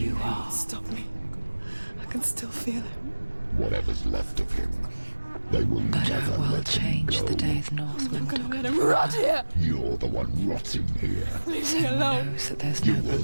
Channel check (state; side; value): inverted; both; correlation -1.00